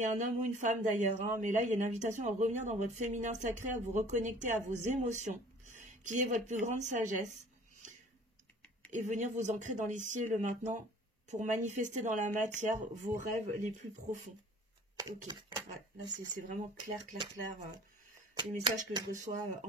un homme ou une femme d'ailleurs, hein, mais là, il y a une invitation à revenir dans votre féminin sacré, à vous reconnecter à vos émotions, qui est votre plus grande sagesse. Et venir vous ancrer dans l'ici et le maintenant pour manifester dans la matière vos rêves les plus profonds. Ok, ouais, là c'est vraiment clair, les messages que je reçois en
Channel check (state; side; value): normal; both; correlation 0.50